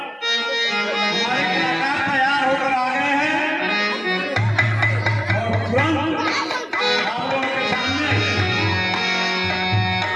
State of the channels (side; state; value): both; identical; correlation 1.00